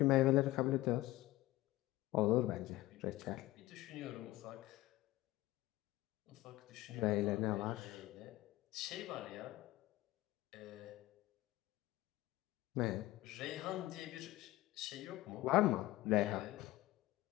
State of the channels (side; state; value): right; quieter; 17.3 dB